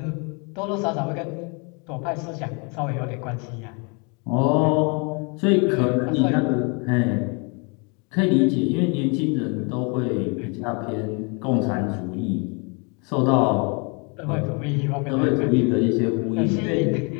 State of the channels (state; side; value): quieter; right; 33.4 dB